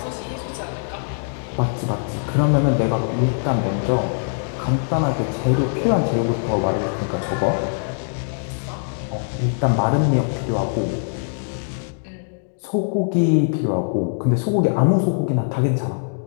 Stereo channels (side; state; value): right; silent; digital silence